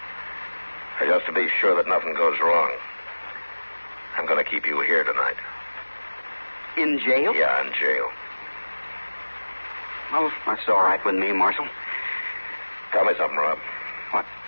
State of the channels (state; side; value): inverted; both; correlation -1.00